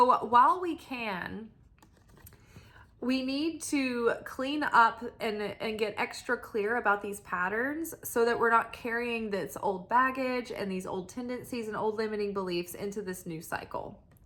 while we can, we need to clean up and get extra clear about these patterns so that we're not carrying this old baggage and these old tendencies and old limiting beliefs into this new cycle.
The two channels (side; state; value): both; identical; correlation 1.00